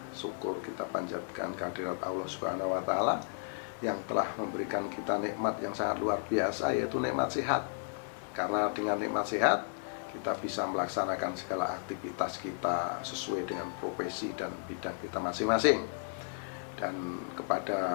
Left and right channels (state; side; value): silent; right; digital silence